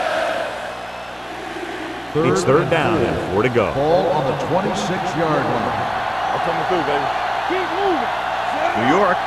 It's 3rd down and 4 to go. Ball on the 26-yard line. I'm coming through, baby. Keep moving. New York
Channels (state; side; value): identical; both; correlation 1.00